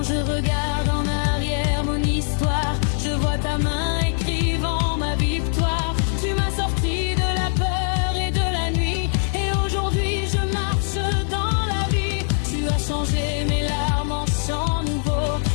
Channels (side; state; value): right; silent; digital silence